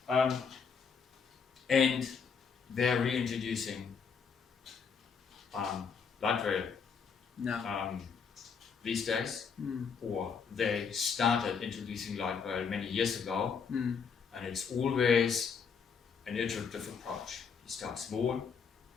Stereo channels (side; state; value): right; quieter; 6.1 dB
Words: that. And they're reintroducing light rail. No. these days, or they started introducing light rail many years ago, and it's always an iterative approach. You start small,